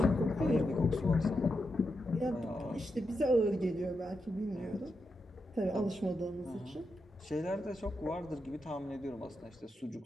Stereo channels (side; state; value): both; normal; correlation 0.86